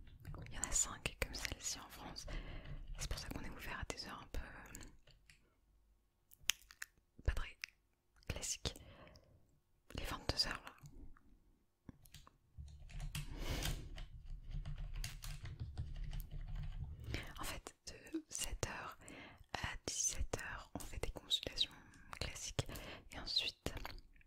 Il y en a 5 comme celle-ci en France. C'est pour ça qu'on est ouvert à des heures un peu pas très classiques. Les 22 heures là. En fait, de 7h à 17h, on fait des consultations classiques. Et ensuite,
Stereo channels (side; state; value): both; identical; correlation 1.00